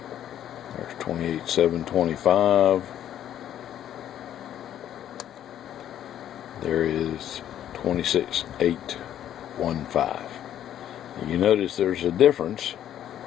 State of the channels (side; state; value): right; quieter; 10.9 dB